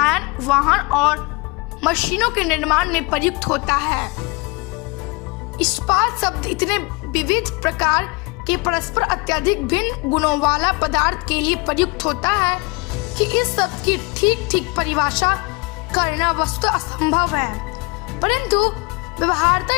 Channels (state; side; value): quieter; right; 27.1 dB